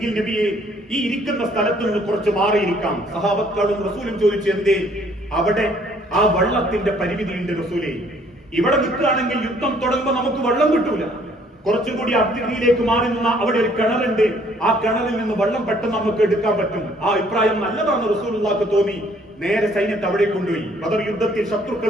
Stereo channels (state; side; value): normal; both; correlation 0.61